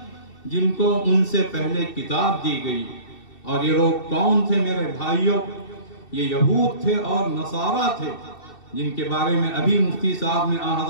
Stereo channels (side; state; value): right; late; 2.7 ms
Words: جن کو ان سے پہلے کتاب دی گئی۔ اور یہ لوگ کون تھے میرے بھائیوں؟ یہ یہود تھے اور نصارہ تھے، جن کے بارے میں ابھی مفتی صاحب نے